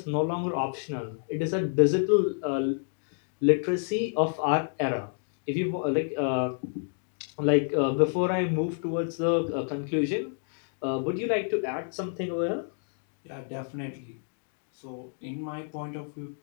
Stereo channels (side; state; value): right; silent; 59 dB below the other